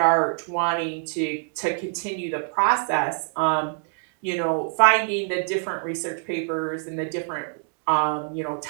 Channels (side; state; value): left; silent; 60 dB below the other